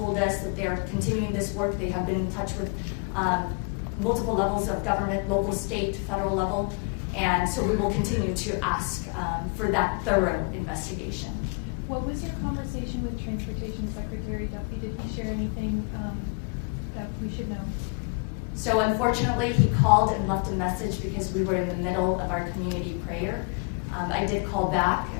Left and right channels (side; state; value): right; quieter; 34.9 dB